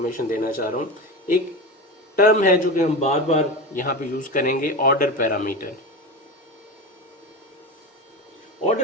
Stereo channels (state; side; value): normal; both; correlation 0.23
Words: देना चाह रहा हूँ। एक टर्म है जो कि हम बार बार यहाँ पे यूज़ करेंगे, ऑर्डर पैरामीटर।